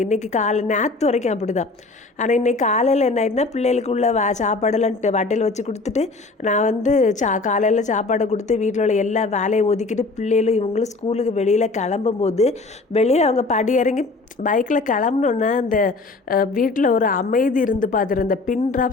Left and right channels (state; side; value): quieter; right; 3.6 dB